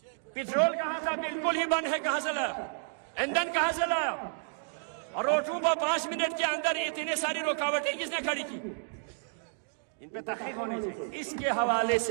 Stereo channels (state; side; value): silent; left; 57 dB below the other